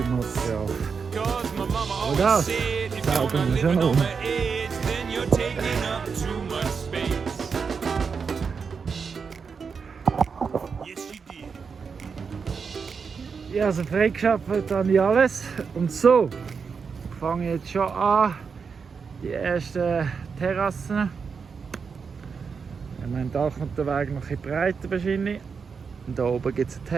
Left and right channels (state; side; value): quieter; left; 5.7 dB